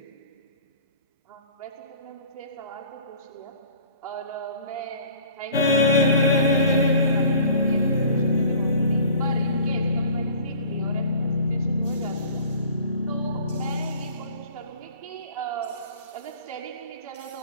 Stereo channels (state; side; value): inverted; both; correlation -0.48